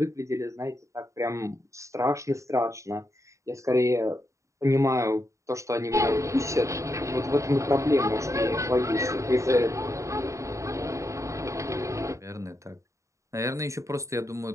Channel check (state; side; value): late; left; 0.15 ms